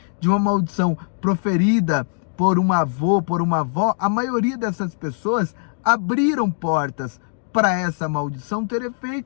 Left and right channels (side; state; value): right; silent; digital silence